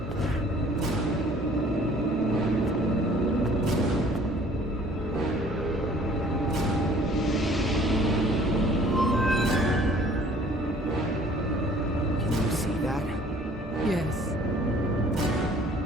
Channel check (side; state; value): both; normal; correlation 0.54